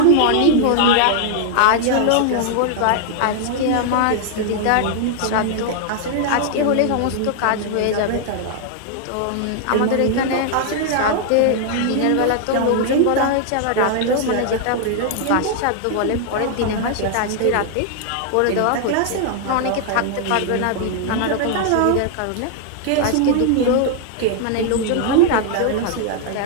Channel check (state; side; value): different; both; correlation 0.00